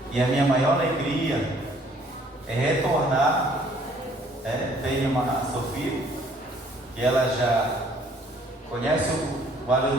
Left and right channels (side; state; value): both; normal; correlation 0.60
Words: e a minha maior alegria é retornar. Tem a Sofia, que ela já conhece o